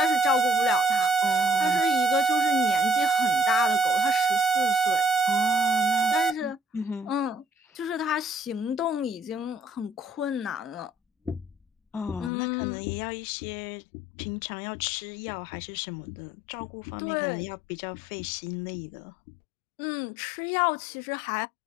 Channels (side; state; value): right; drops out; at 12.3 s